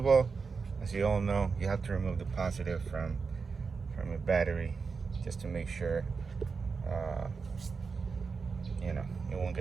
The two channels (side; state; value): left; quieter; 5.0 dB